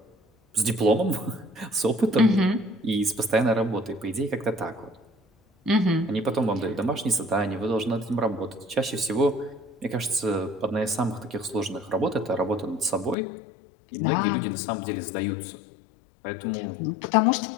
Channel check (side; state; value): right; drops out; at 13.2 s